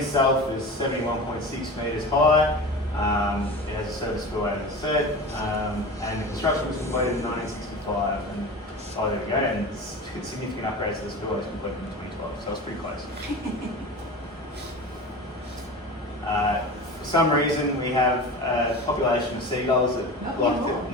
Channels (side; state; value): both; normal; correlation 0.31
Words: is 71.6 metres high. It has a service spillway, as I said, and the construction was completed in 1965. And there we go. And significant upgrades to the spillway was completed in 2012, so it's pretty close. For some reason, we have a population of seagulls that like it.